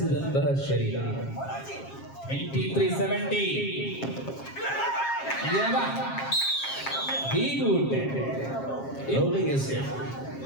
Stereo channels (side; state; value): right; late; 7.4 ms